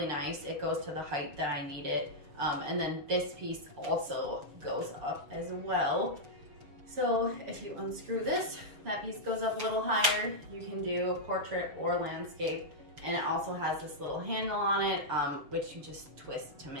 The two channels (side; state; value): left; late; 6.7 ms